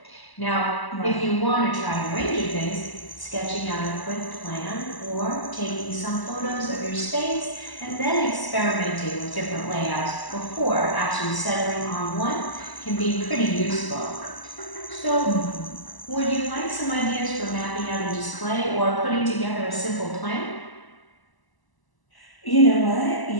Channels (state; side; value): late; right; 1.0 ms